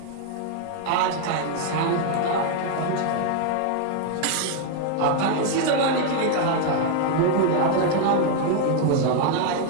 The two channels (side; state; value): both; different; correlation 0.00